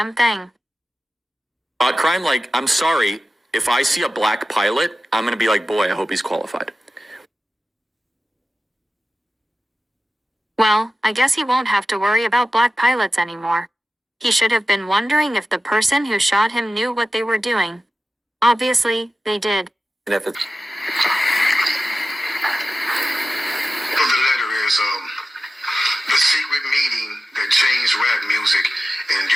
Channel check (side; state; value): both; normal; correlation 0.93